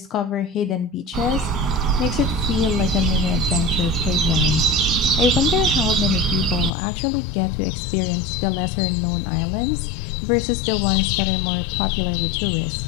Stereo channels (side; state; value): right; drops out; at 6.7 s